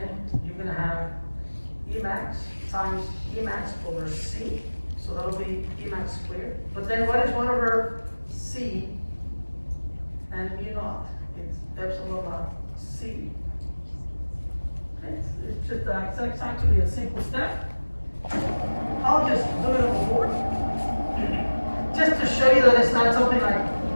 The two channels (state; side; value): inverted; both; correlation -1.00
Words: you're gonna have E max times E max over C. So that'll be E max squared. But then what is 1 over C and mu naught? It's epsilon naught C. It's just it's actually a simple step. I'll just do it on the board, just to show you that it's not something